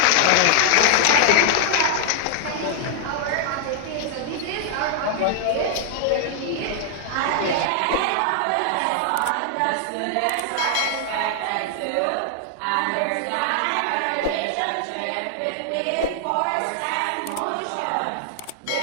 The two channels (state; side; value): different; both; correlation 0.00